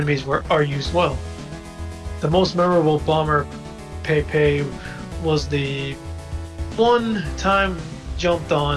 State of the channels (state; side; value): identical; both; correlation 1.00